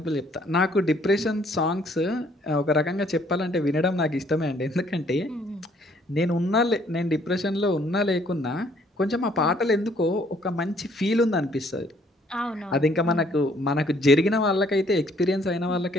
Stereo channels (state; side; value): normal; both; correlation 0.63